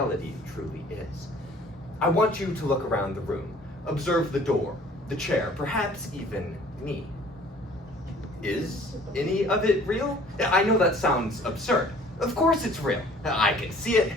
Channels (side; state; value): both; normal; correlation 0.52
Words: truly is. I want you to look around the room, observe the door, the chair, perhaps even me. Is any of it real? I know that sounds absurd. Of course it's real. I can see it,